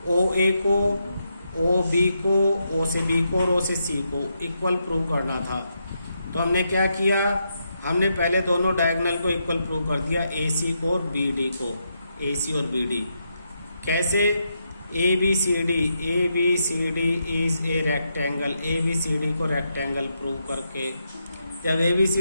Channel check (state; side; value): inverted; both; correlation -0.82